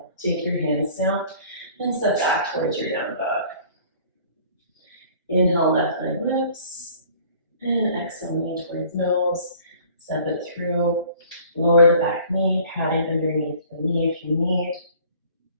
take your hands down and step back towards your down dog. Inhale, left leg lifts. And exhale, knee towards nose. Step it through. Lower the back knee, padding underneath the knee if you need.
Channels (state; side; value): inverted; both; correlation -0.51